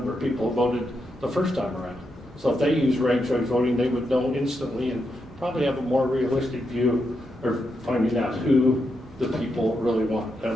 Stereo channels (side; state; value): both; normal; correlation 0.83